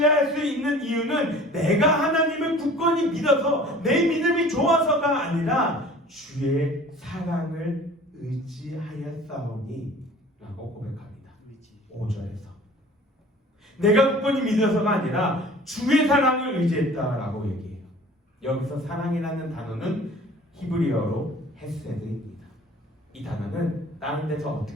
수 있는 이유는 내가 하나님을 굳건히 믿어서 내 믿음이 좋아서가 아니라 주의 사랑을 의지하였사오니 라고 고백합니다. 5절에서 내가 굳건히 믿어서가 아니라 주의 사랑을 의지했다라고 얘기해요. 여기서 사랑이라는 단어는 히브리어로 헤세드입니다. 이 단어는 다른 데서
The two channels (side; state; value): both; normal; correlation 0.46